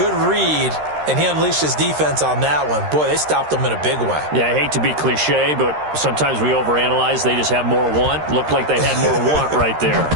read, and he unleashed his defense on that one. Boy, they stopped him in a big way. Yeah, I hate to be cliche, but sometimes we overanalyze. They just have more want. Looked like they had more want right there.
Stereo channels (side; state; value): left; late; 13 ms